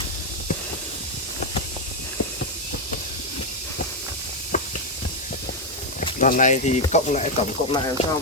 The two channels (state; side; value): normal; both; correlation 0.03